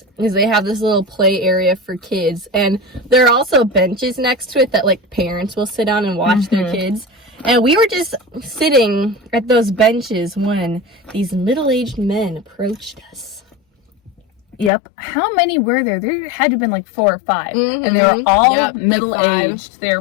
is they have this little play area for kids, and there are also benches next to it that like parents will sit on and watch their kids. And we were just sitting at those benches when these middle-aged men approached us. Yep. How many were there? There had to have been like 4 or 5. And they were all middle-aged. They were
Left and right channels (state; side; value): drops out; right; at 14.7 s